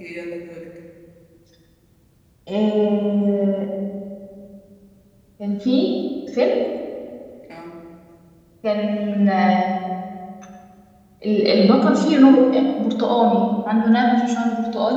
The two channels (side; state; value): both; identical; correlation 1.00